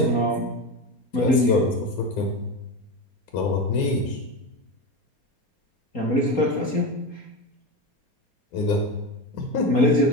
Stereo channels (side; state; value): right; late; 4.2 ms